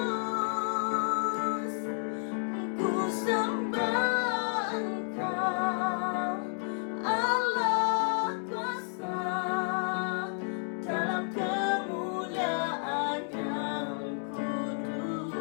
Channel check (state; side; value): silent; right; 56 dB below the other